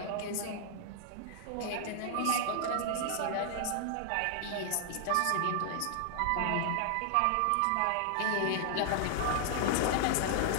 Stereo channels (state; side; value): different; both; correlation 0.00